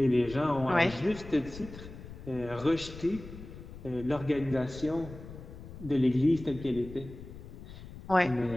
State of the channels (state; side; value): noise; left; rumble, 14 dB below the sound